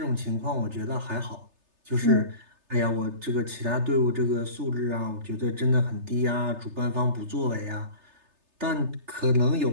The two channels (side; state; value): left; late; 3.3 ms